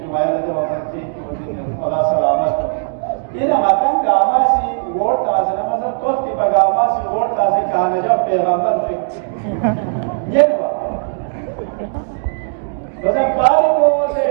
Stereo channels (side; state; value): left; silent; 68 dB below the other